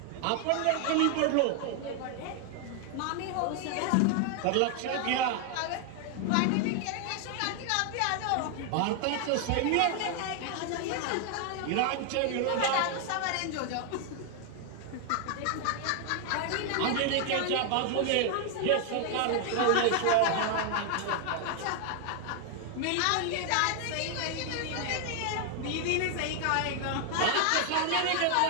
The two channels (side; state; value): both; different; correlation 0.01